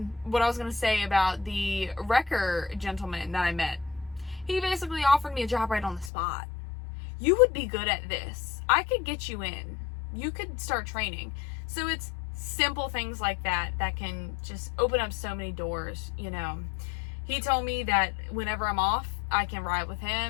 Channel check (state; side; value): drops out; right; at 6.1 s